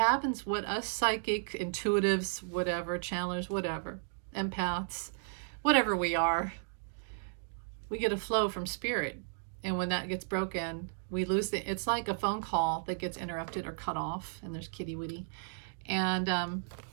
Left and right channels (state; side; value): silent; left; digital silence